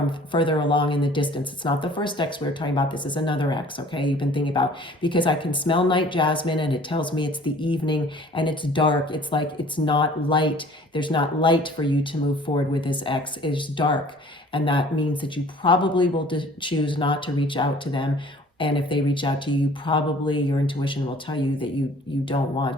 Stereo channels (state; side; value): normal; both; correlation 0.51